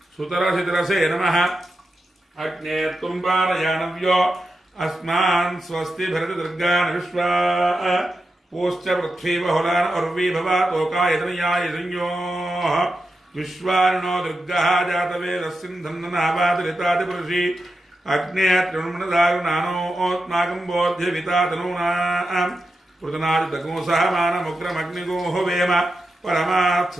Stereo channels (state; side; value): normal; both; correlation 0.89